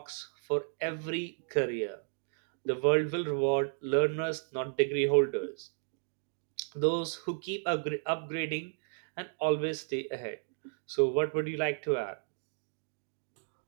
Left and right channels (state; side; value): silent; left; digital silence